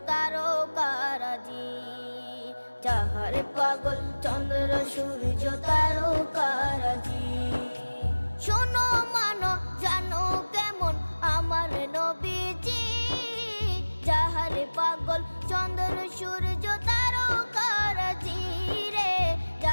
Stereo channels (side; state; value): both; inverted; correlation -1.00